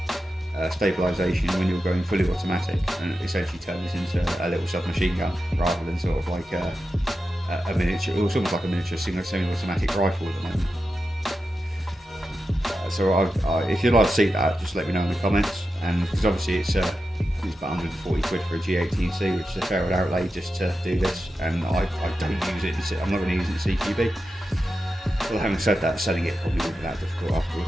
stabilisation when you're going fully automatic, and it essentially turns into a little submachine gun rather than sort of like a miniature, or almost like a miniature semi-automatic rifle at the moment. So if you'd like to see that, just let me know in the comments, and because obviously it's about 140 quid for a G18C, which is a fair outlay just to do this, and I don't use it. I'm not going to use it in CQB. Well, having said that, selling it probably wouldn't be that difficult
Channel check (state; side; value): normal; both; correlation 0.90